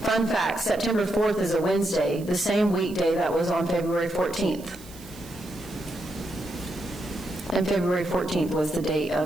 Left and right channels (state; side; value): noise; right; hiss, 20 dB below the sound